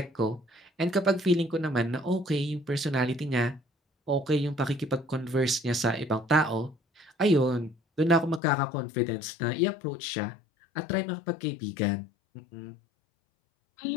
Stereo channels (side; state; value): right; drops out; at 8.4 s